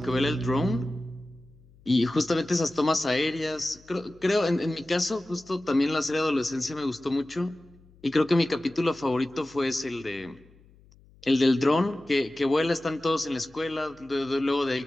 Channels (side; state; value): left; noise; hum, 27 dB below the sound